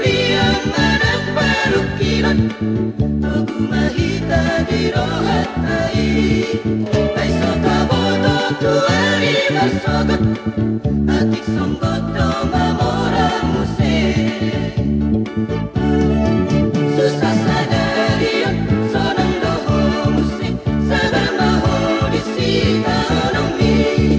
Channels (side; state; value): both; identical; correlation 1.00